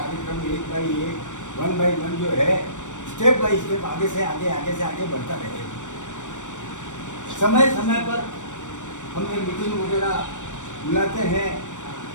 1 बाई 1, 1 बाई 1 जो है, स्टेप बाई स्टेप आगे से आगे बढ़ता रहेगा। समय समय पर हम ये मीटिंग वगैरह बुलाते हैं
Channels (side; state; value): right; late; 0.85 ms